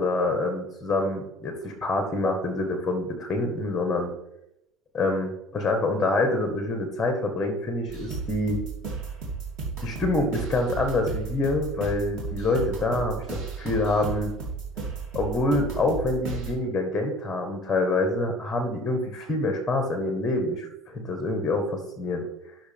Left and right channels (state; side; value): normal; both; correlation 0.49